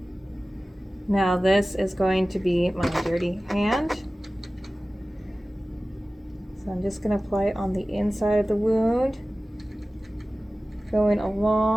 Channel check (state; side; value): normal; both; correlation 0.97